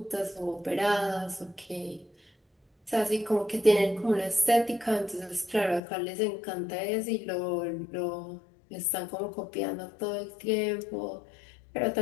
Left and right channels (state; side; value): drops out; right; at 5.8 s